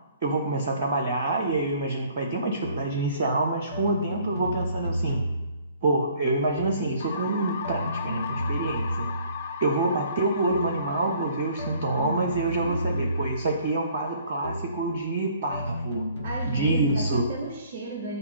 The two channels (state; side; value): inverted; both; correlation -0.58